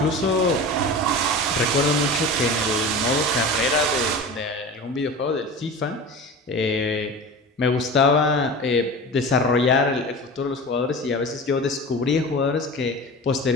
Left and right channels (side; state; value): both; normal; correlation 0.32